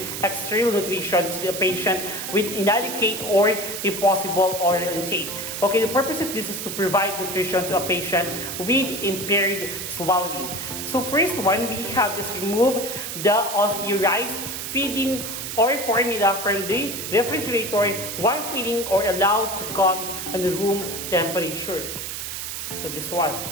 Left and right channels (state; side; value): noise; right; hiss, 6 dB below the sound